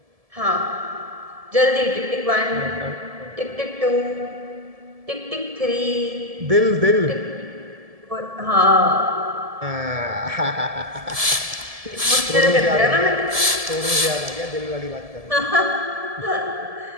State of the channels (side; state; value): left; late; 1.7 ms